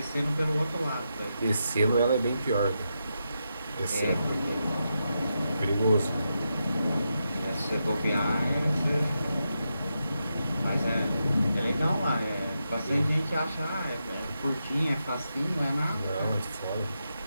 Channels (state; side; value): inverted; both; correlation -0.86